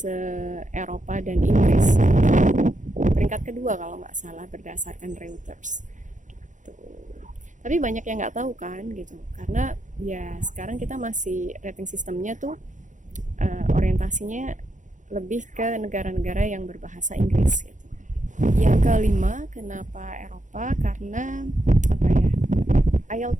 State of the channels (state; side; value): late; left; 0.36 ms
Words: dan Inggris. Peringkat kedua kalau nggak salah berdasarkan Reuters. Gitu. Tapi banyak yang nggak tahu kan gitu, karena ya sekarang kita masih rating sistemnya tuh orientasinya lebih ke negara-negara yang berbahasa Inggris gitu. Yang kelima, kenapa Eropa? Karena